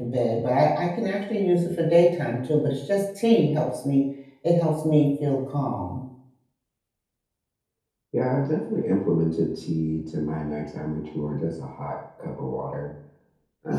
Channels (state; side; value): identical; both; correlation 1.00